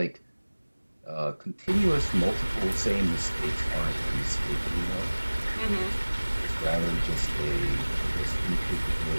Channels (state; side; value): inverted; both; correlation -1.00